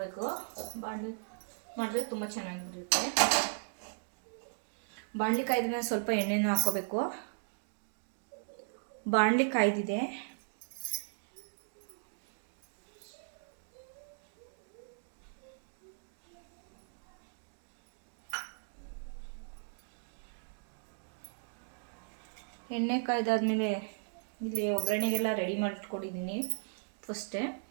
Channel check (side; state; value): left; silent; digital silence